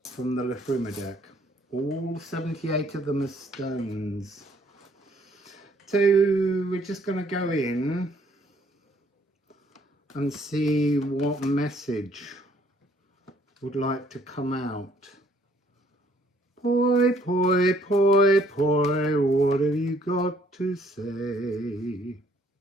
from the Liffruma deck. All 78 of them are stones. So we're just going to go in and see what message would like to come out. Poi, poi, poi, poi, what have you got to say?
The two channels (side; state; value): both; normal; correlation 0.64